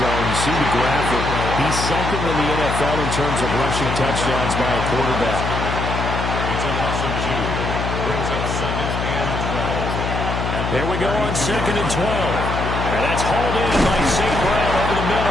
You see the graphic. He's 2nd in the NFL in terms of rushing touchdowns by a quarterback. It's a loss of 2. Brings up 2nd and 12. There we go on 2nd and 12. And that's hauled in by St. Brown over the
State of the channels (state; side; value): noise; left; hum, 2 dB below the sound